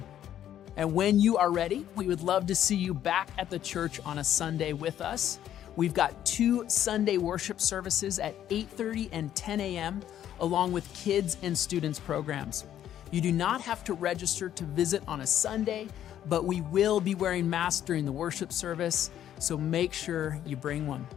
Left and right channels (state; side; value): quieter; right; 11.0 dB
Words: And when you are ready, we would love to see you back at the church on a Sunday with us. We've got 2 Sunday worship services at 8:30 and 10 a.m., along with kids and students programs. You do not have to register to visit on a Sunday, but we will be wearing masks during the worship service, so make sure you bring one.